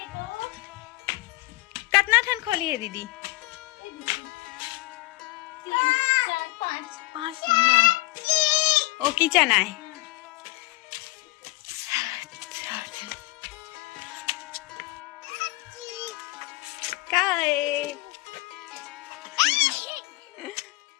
कितना ठन खोली है दीदी? 5 ना ओ किचन आए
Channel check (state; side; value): quieter; right; 21.6 dB